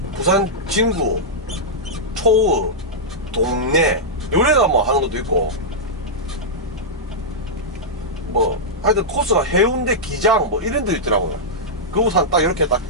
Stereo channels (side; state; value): both; normal; correlation -0.09